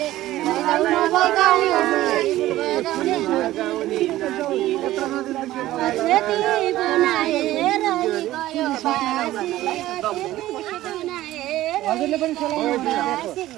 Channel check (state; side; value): quieter; left; 15.3 dB